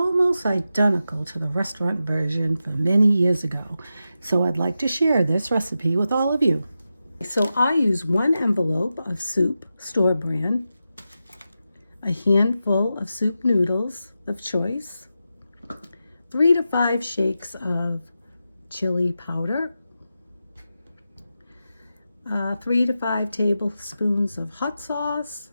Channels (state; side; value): inverted; both; correlation -0.90